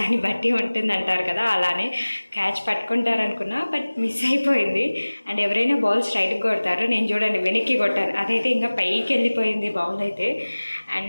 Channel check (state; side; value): inverted; both; correlation -1.00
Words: బట్టి ఉంటుంది అంటారు కదా, అలానే క్యాచ్ పట్టుకుంటారనుకున్నా, బట్ మిస్ అయిపోయింది. అండ్ ఎవరైనా బాల్ స్ట్రైట్కి కొడతారు, నేను చూడండి వెనక్కి కొట్టాను, అదైతే ఇంకా పైకి వెళ్ళిపోయింది బాల్ అయితే.